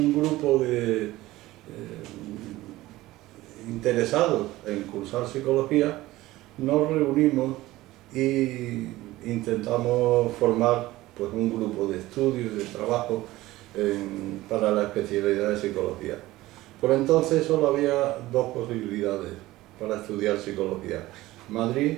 grupo de interesados en cursar psicología nos reunimos y intentamos formar pues un grupo de estudio y de trabajo para la especialidad de psicología. Por entonces solo había 2 posibilidades para estudiar psicología: Madrid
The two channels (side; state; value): left; quieter; 17.5 dB